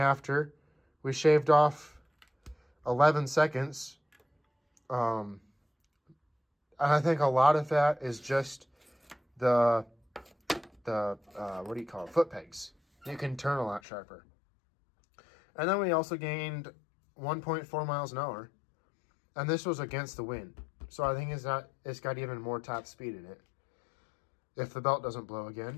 We shaved off 11 seconds. And I think a lot of that is just the what do you call it? Foot pegs. You can turn a lot sharper. And then we also gained 1.4 miles an hour. And this was against the wind. So I think it's got even more top speed in it, if the belt doesn't blow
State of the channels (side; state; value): right; drops out; at 13.8 s